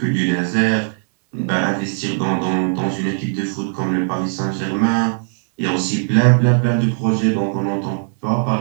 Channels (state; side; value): silent; left; 66 dB below the other